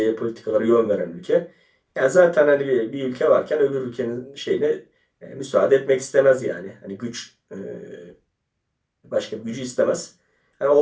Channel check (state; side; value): identical; both; correlation 1.00